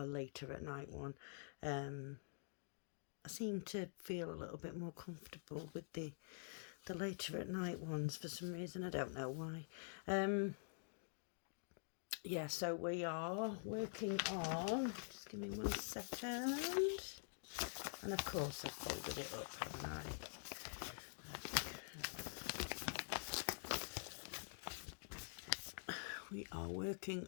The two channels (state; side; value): silent; right; digital silence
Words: later at night one. I seem to feel a little bit more comfortable with the later at night ones for some reason. I don't know why. Yeah, so we are working on. Just give me 1 second. And of course, I've folded it up, haven't I? We are working